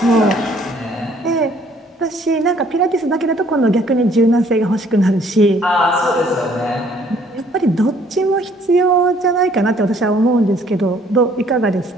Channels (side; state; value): both; normal; correlation 0.61